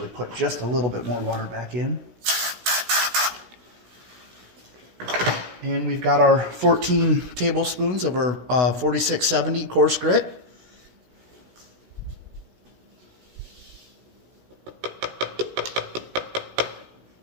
put just a little bit more water back in. And we've got our 14 tablespoons of our 4670 coarse grit.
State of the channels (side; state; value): left; late; 16 ms